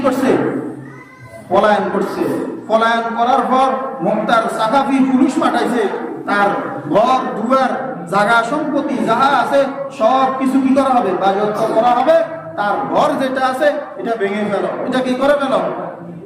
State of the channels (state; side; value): identical; both; correlation 1.00